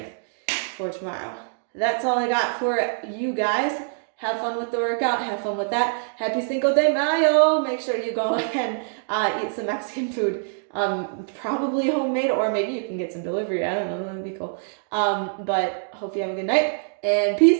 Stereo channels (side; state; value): left; silent; digital silence